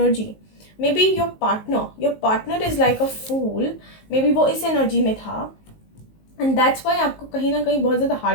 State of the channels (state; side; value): late; right; 19 ms